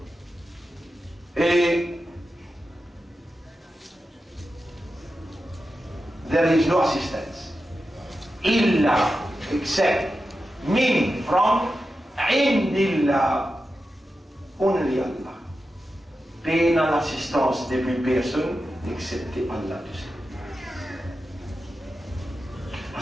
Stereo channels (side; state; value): both; normal; correlation 0.91